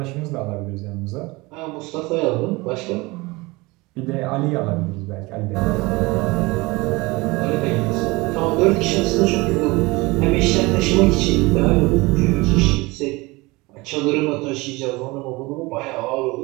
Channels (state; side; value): quieter; left; 23.2 dB